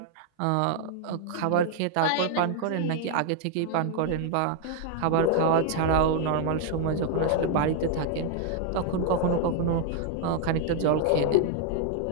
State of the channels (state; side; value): different; both; correlation 0.00